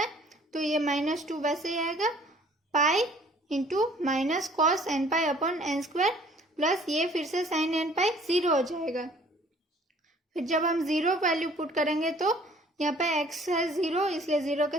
तो ये -2 वैसे ही आएगा, pi into minus cos n pi upon n square plus ये फिर से साइन एन पाई 0 हो जाएगा। फिर जब हम 0 वैल्यू पुट करेंगे तो यहाँ पे x है 0 इसलिए 0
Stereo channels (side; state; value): both; normal; correlation 0.55